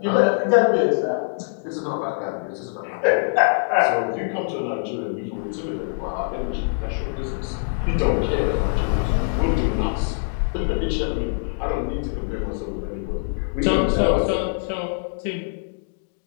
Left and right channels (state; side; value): silent; right; digital silence